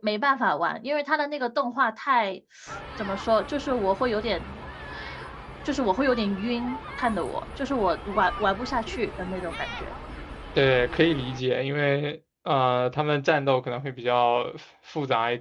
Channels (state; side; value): identical; both; correlation 1.00